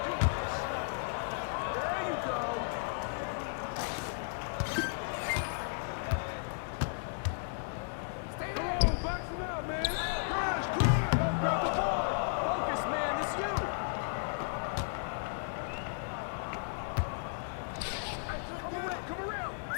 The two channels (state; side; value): silent; right; digital silence